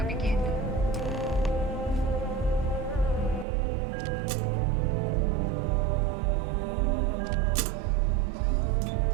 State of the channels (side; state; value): left; drops out; at 3.5 s